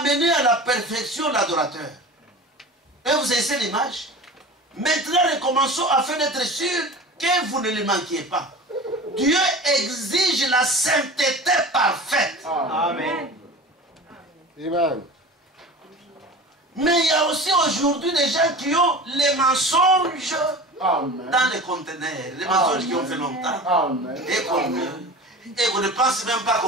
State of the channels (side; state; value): both; normal; correlation 0.35